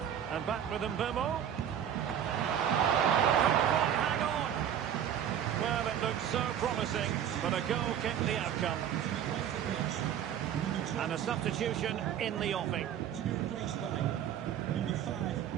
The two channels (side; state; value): left; quieter; 9.7 dB